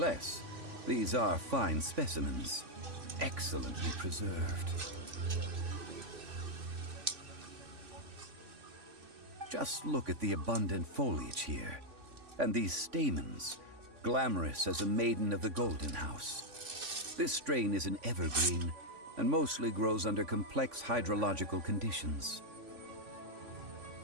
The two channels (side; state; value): left; late; 3.5 ms